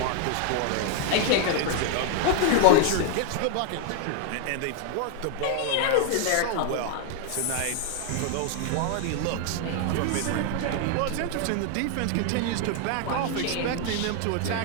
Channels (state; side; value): different; both; correlation 0.00